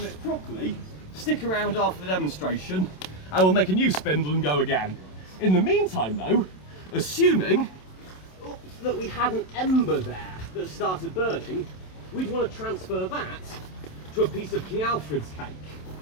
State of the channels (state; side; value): late; right; 27 ms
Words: properly, stick around after the demonstration. I will make a new spindle and go again. In the meantime though, assuming that we had an ember there that started burning, we'd want to transfer that to a piece of King Alfred's cake.